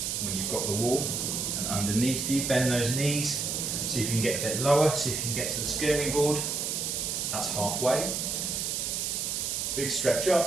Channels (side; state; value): right; noise; hiss, 1 dB below the sound